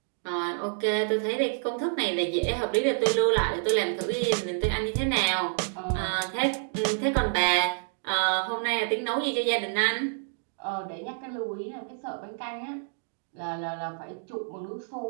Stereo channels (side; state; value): left; silent; digital silence